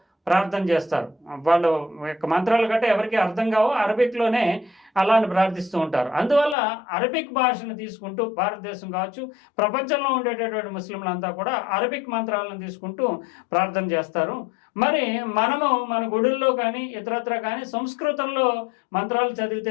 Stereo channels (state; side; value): drops out; right; at 6.6 s